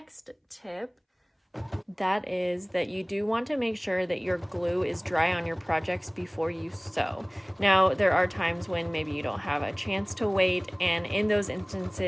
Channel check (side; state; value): both; identical; correlation 1.00